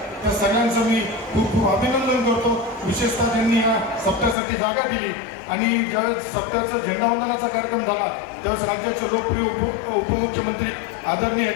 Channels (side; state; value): right; drops out; at 4.4 s